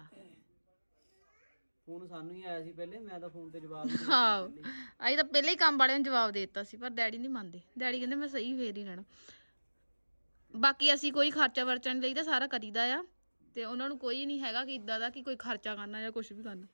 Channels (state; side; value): inverted; both; correlation -1.00